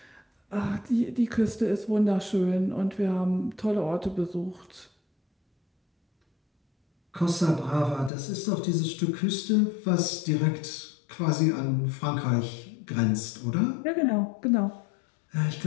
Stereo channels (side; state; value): right; drops out; at 8.1 s